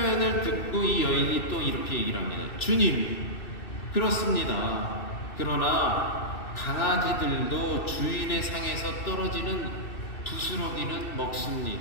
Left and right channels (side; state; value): right; late; 2.7 ms